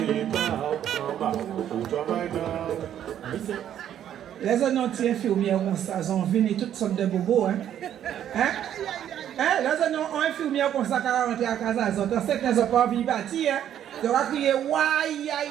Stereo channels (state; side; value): quieter; left; 10.4 dB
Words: pas, on va au travail là. Les annonces infirmières comme ça, ils ont venu toutes sortes de bobos, hein? Les annonces infirmières comme ça, qui ont rentré à casa, ils ont sait qu'ils n'ont pas envie de bâtir, hein? Ils vont crier, aïe,